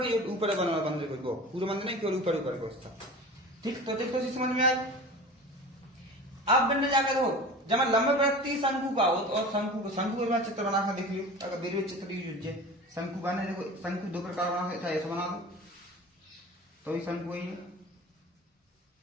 के ऊपर बना हुआ मंदिर को, पूरा मंदिर नहीं केवल ऊपर ऊपर को उसका। ठीक, तो देखो समझ में आए। अब बनने जाकर हो जब मैं लंबवृत्तीय शंकु का हो और शंकु का चित्र बना कर देख लियो, अगर मेरे चित्र यूज है शंकु बने देखो, शंकु दो प्रकार बना था, ऐसा बना दो तो भी शंकु वही है,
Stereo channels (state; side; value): normal; both; correlation 0.36